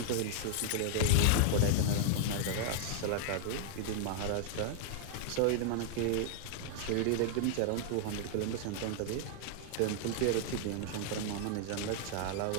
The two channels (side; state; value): both; different; correlation -0.01